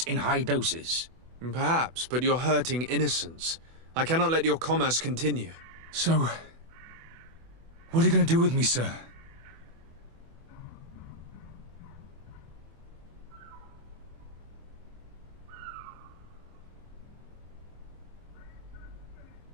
in high doses. Perhaps, but you're hurting innocents. I cannot let your commerce continue. So, what are you going to do with me, sir?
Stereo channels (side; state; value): left; late; 24 ms